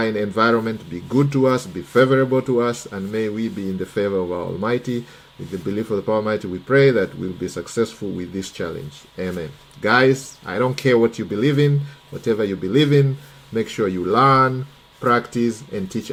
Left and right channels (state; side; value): identical; both; correlation 1.00